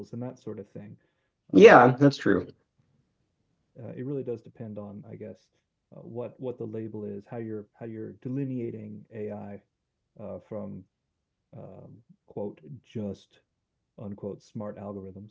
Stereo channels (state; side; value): identical; both; correlation 1.00